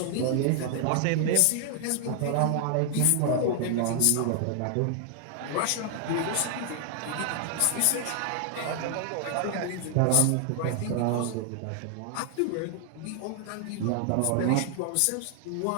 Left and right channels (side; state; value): both; different; correlation 0.00